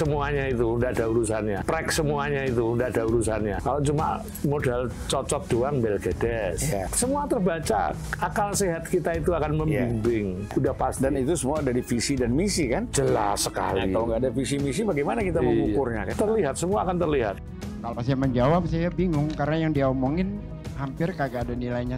itu udah ada urusannya. Track semuanya itu udah ada urusannya. Kalau cuma modal cocok doang belgedes. Semua terbaca. Akal sehat kita itu akan membimbing. Udah pasti. Dan itu semua dari visi dan misi kan? Jelas sekali. Nah, kalau nggak ada visi misi bagaimana kita mengukurnya? Kan? Terlihat, semua akan terlihat. Kalau saya menjawab saya bingung karena yang dia omongin hampir kagak ada nilainya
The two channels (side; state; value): both; identical; correlation 1.00